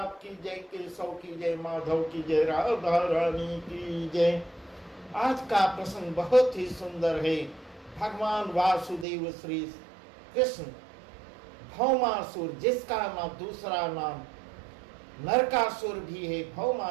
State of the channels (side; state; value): left; drops out; at 9.1 s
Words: की जय, केशव की जय, माधव की जय, राधा रानी की जय। आज का प्रसंग बहुत ही सुंदर है। भगवान वासुदेव श्री कृष्ण भौमासुर, जिसका नाम दूसरा नाम नरकासुर भी है,